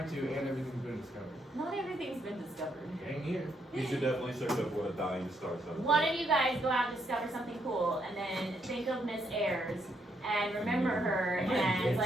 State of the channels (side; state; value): both; normal; correlation 0.75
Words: to, and everything's been discovered. Not everything's been discovered. Dang here. You should definitely search up what a dying star sounds One like. of you guys go out and discover something cool, and then think of Miss Ayers, and remember her, and it's